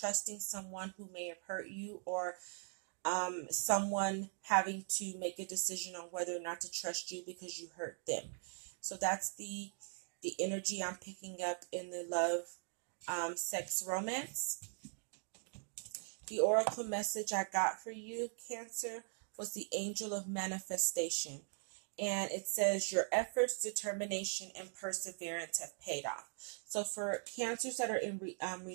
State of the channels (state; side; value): silent; left; 51 dB below the other